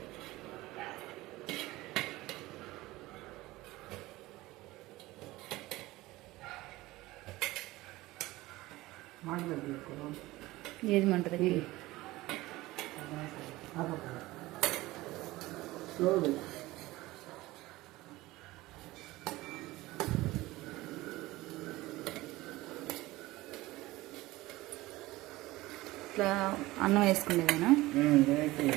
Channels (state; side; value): quieter; left; 18.9 dB